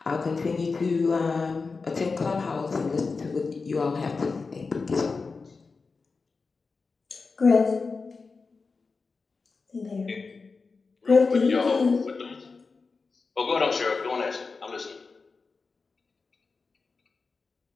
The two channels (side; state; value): right; quieter; 4.4 dB